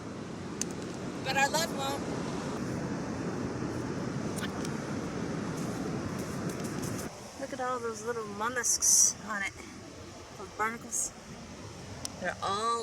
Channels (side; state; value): both; identical; correlation 1.00